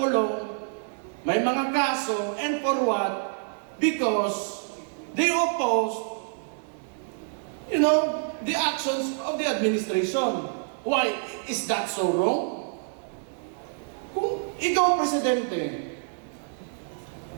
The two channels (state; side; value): silent; left; 60 dB below the other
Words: may mga kaso, and for what? Because they opposed the actions of the administration. Why? Is that so wrong? Kung ikaw presidente,